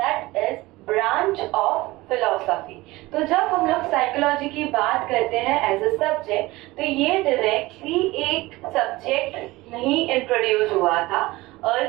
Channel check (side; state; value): left; quieter; 20.0 dB